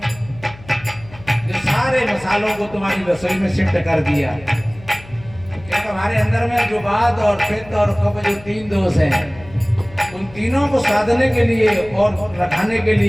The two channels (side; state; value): left; noise; hum, 20 dB below the sound